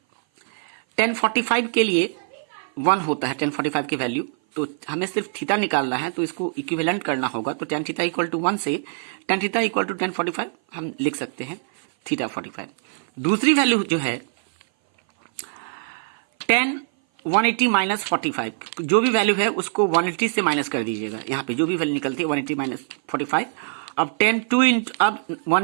tan 45 के लिए 1 होता है, tan 45 की वैल्यू. तो हमें सिर्फ थीटा निकालना है, तो इसको इक्विवेलेंट करना होगा. तो tan थीटा इक्वल टू 1 से tan theta equal to tan 45 हम लिख सकते हैं थीटा 45. दूसरी वैल्यू जो है tan 180 माइनस 45, जो भी वैल्यू है उसको 180 से माइनस कर दीजिएगा. यहाँ पे जो भी वैल्यू निकलती है 180 माइनस 45. अब tan 2 इंटू, अब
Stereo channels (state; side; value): silent; left; 57 dB below the other